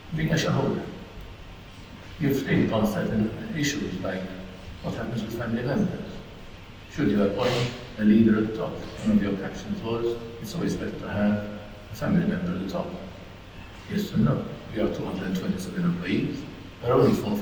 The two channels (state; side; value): identical; both; correlation 1.00